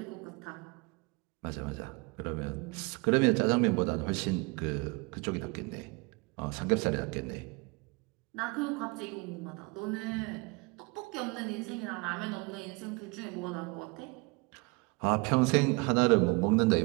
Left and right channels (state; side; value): quieter; left; 28.1 dB